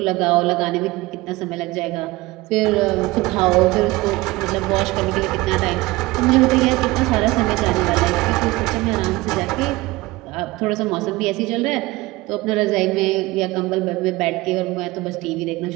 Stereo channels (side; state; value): left; quieter; 20.5 dB